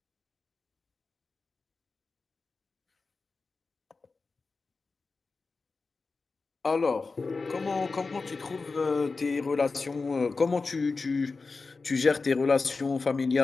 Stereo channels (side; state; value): right; quieter; 4.1 dB